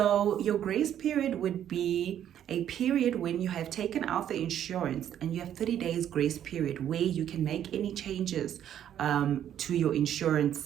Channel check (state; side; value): quieter; left; 10.3 dB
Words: your grace period would be a period when you have taken out the insurance and you have 30 days grace period where you can make any changes to your